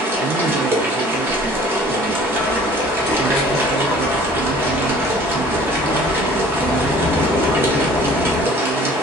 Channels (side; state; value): both; normal; correlation 0.50